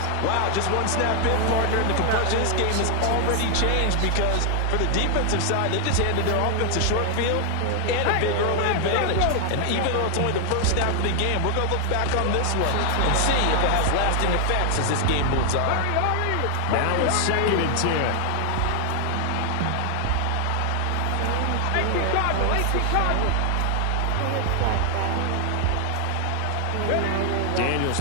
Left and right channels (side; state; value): both; different; correlation 0.00